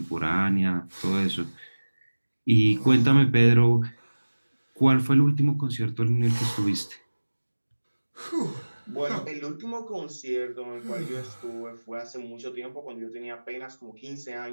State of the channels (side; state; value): both; inverted; correlation -1.00